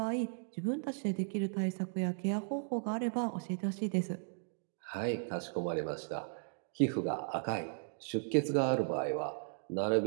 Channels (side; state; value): left; silent; digital silence